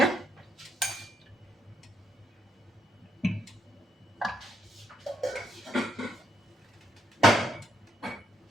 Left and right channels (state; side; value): normal; both; correlation 0.74